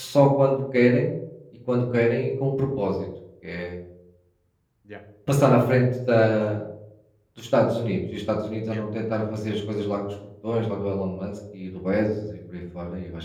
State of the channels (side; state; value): both; identical; correlation 1.00